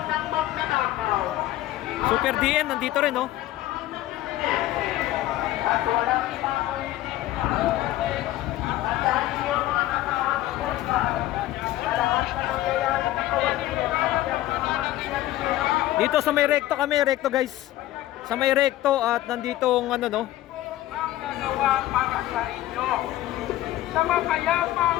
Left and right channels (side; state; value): right; quieter; 15.0 dB